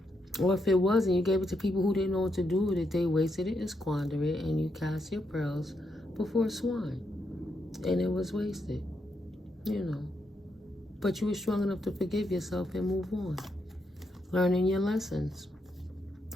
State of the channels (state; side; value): normal; both; correlation 0.80